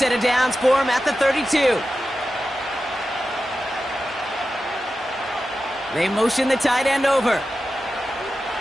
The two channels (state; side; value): normal; both; correlation 0.92